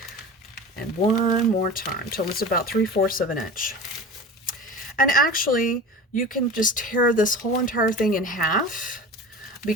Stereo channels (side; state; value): both; normal; correlation 0.34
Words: and one more time till it's about 3/4 of an inch. And actually you can just tear this whole entire thing in half,